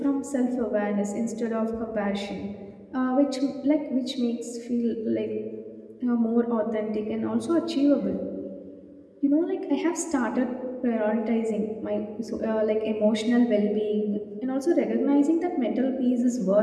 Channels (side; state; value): both; identical; correlation 1.00